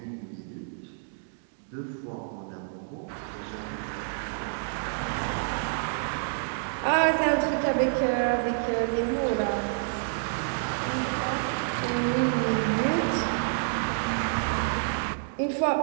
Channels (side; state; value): left; silent; digital silence